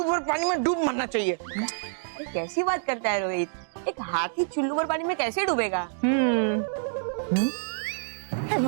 भर पानी में डूब मरना चाहिए। कैसी बात करता है रोहित? एक हाथी चुल्लू भर पानी में कैसे डूबेगा?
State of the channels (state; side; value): silent; left; digital silence